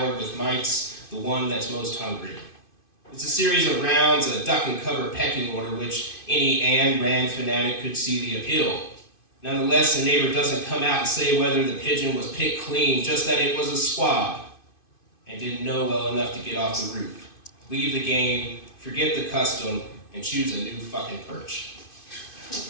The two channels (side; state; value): right; late; 2.5 ms